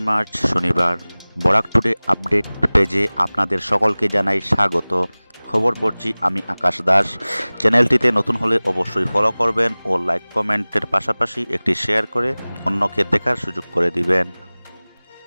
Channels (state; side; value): inverted; both; correlation -1.00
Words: মার্চ শনিবার। বরাক টুডে আপডেট পেজে আপনাদের সকলকে জানাই স্বাগত। খবর পড়ছি আমি আকাশ দাস। চ্যানেলটিতে নতুন হলে অবশ্যই ফলো করবেন ও লাইক কমেন্টের পাশাপাশি একটি শেয়ার করে অন্যকে দেখার সুযোগ করে দিবেন।